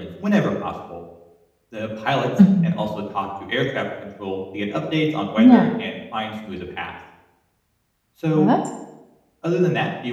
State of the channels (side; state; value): both; identical; correlation 1.00